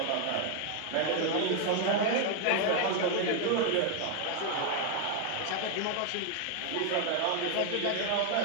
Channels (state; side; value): different; both; correlation 0.00